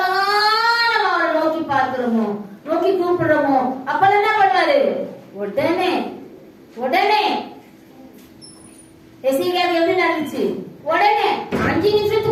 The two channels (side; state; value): both; identical; correlation 1.00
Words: நம்ம அவரை நோக்கி பார்க்கிறோமோ, நோக்கி கூப்பிடுறோமோ, அப்பெல்லாம் என்ன பண்ணுவாரு? உடனே உடனே எசேக்கியாவுக்கு எப்படி நடந்துச்சு? உடனே 5